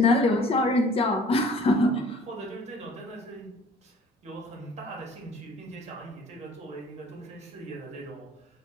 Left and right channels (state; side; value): normal; both; correlation 0.51